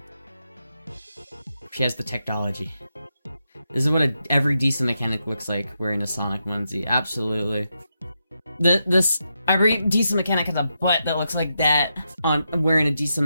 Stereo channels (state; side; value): inverted; both; correlation -0.85